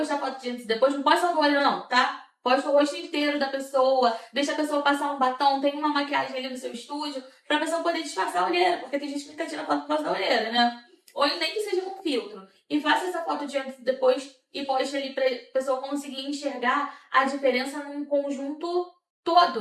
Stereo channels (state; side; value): identical; both; correlation 1.00